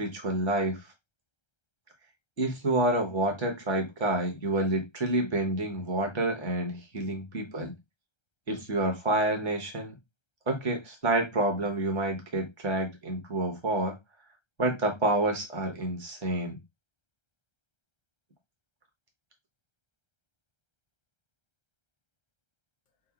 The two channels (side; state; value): right; late; 1.3 ms